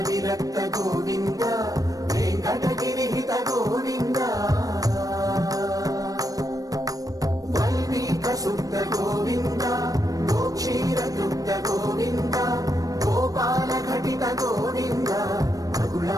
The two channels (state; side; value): late; left; 0.17 ms